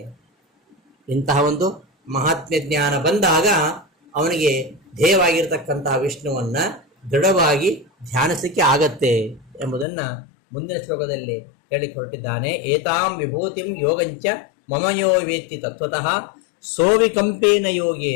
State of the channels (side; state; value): right; drops out; at 9.9 s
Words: ಇಂತಹ ಒಂದು ಮಹಾತ್ಮ್ಯ ಜ್ಞಾನ ಬಂದಾಗ ಅವನಿಗೆ ಧ್ಯೇಯವಾಗಿರತಕ್ಕಂತಹ ವಿಷ್ಣುವನ್ನು ದೃಢವಾಗಿ ಧ್ಯಾನಿಸಲಿಕ್ಕೆ ಆಗತ್ತೆ ಎಂಬುದನ್ನು ಮುಂದಿನ ಶ್ಲೋಕದಲ್ಲಿ ಹೇಳಿಕೊಟ್ಟಿದ್ದಾನೆ. ಏತಾಂ ವಿಭೂತಿಂ ಯೋಗಂಚ ಮಮಯೋ ವೇತ್ತಿ ತತ್ವತಃ ಸೋವಿಕಂಪೇನ